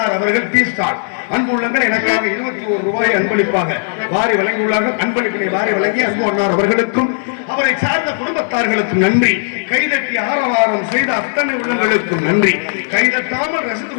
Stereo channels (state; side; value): silent; right; digital silence